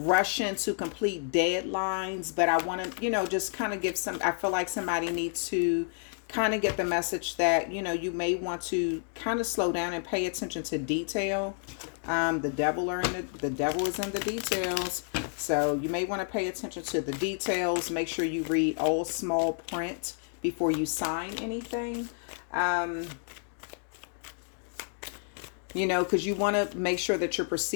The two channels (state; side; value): silent; right; 58 dB below the other